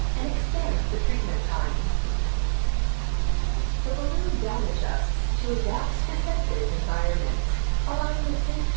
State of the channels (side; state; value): left; silent; 55 dB below the other